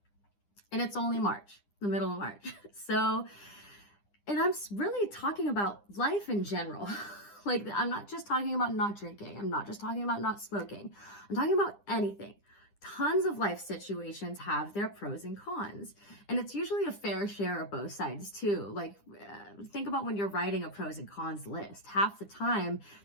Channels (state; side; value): late; right; 9.9 ms